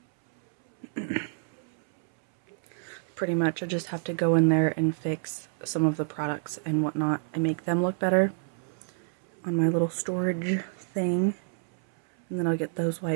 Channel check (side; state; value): left; silent; 59 dB below the other